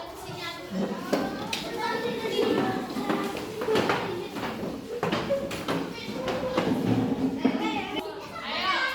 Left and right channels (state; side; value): identical; both; correlation 1.00